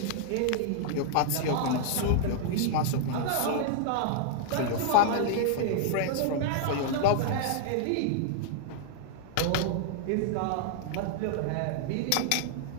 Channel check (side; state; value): both; different; correlation -0.01